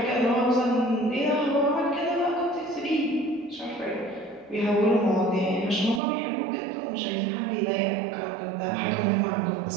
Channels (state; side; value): drops out; left; at 6.0 s